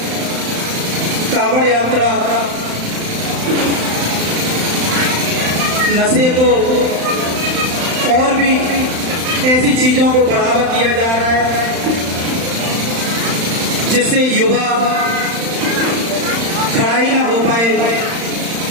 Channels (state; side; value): late; left; 35 ms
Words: कांवड़ यात्रा, नशे को और भी ऐसी चीजों को बढ़ावा दिया जा रहा है जिससे युवा खड़ा ही ना हो पाए।